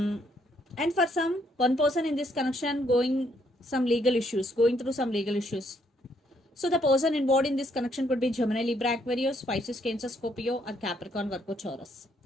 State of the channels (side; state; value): both; normal; correlation 0.71